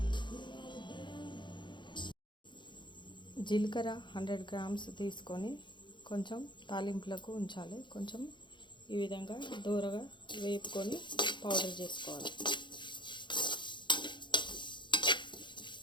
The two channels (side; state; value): right; late; 0.23 ms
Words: జీలకర్ర 100 గ్రామ్స్ తీసుకొని కొంచెం తాలింపులకు ఉంచాలి. కొంచెం ఈ విధంగా దూరగా వేపుకొని పౌడర్ చేసుకోవాలి.